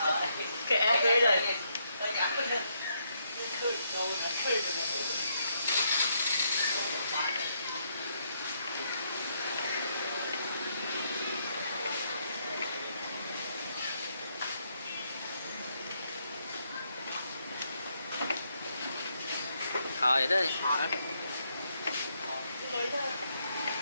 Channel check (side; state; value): both; inverted; correlation -0.76